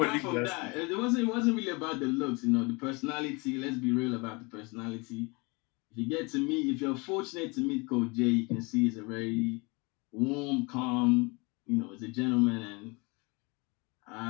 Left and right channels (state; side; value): quieter; right; 27.8 dB